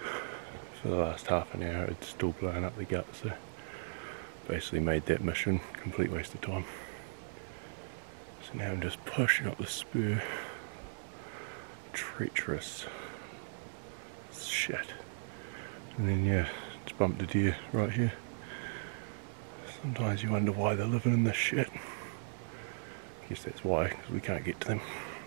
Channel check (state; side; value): silent; left; digital silence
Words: for the last half an hour it's still blowing up the gut, so basically made that mission a complete waste of time. So now I'm just pushing up the spur. Treacherous shit. And then yeah, just bumped a deer right here. Sometimes you wonder why they're living in this shit. I guess that's why, because we can't get to them.